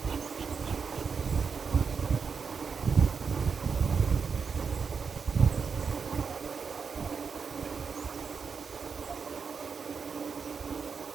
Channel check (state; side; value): quieter; left; 5.8 dB